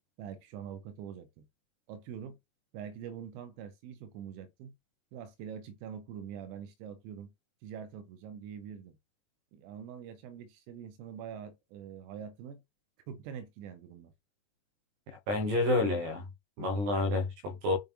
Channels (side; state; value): left; late; 20 ms